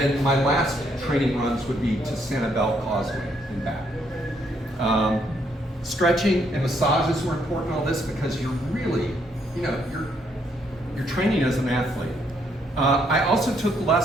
my last training runs would be to Sanibel Causeway and back. Stretching and massages were important in all this because you're really, you're training as an athlete. I also took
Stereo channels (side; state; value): both; normal; correlation 0.72